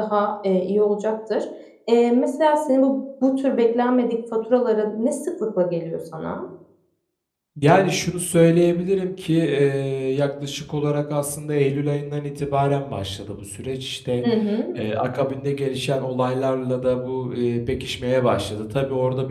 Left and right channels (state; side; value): identical; both; correlation 1.00